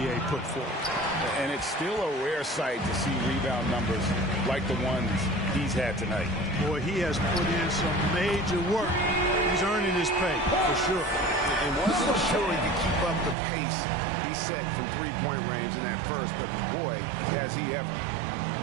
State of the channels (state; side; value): drops out; left; at 13.4 s